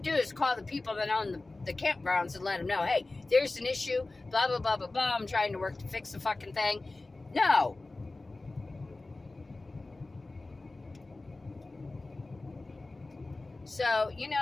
is call the people that own the campgrounds and let them know, hey, there's an issue, blah, blah, blah, blah, blah. I'm trying to work to fix the fucking thing. No. So,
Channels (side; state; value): right; quieter; 3.2 dB